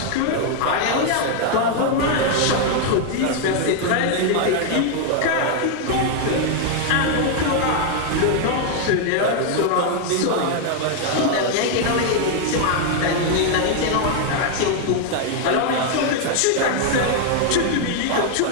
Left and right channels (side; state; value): both; different; correlation 0.00